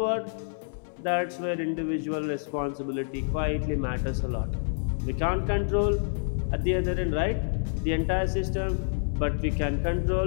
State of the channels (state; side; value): silent; right; 58 dB below the other